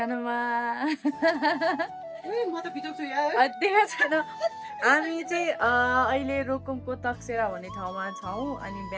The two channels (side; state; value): both; identical; correlation 1.00